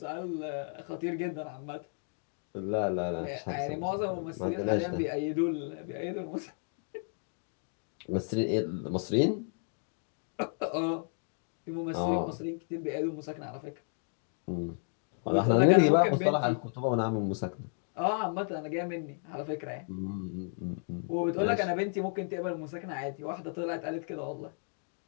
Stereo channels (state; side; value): silent; right; 56 dB below the other